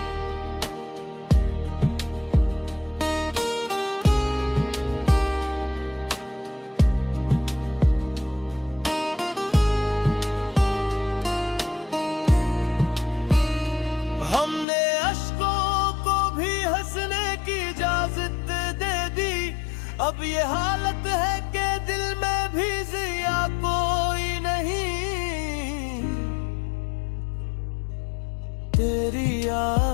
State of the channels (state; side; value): drops out; right; at 14.7 s